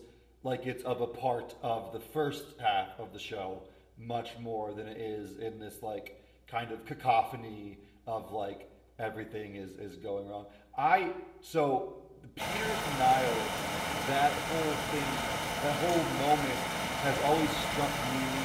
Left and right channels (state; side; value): identical; both; correlation 1.00